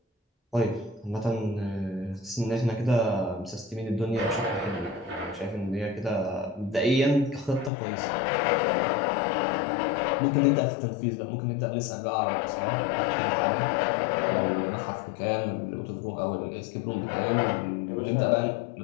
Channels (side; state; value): right; drops out; at 7.7 s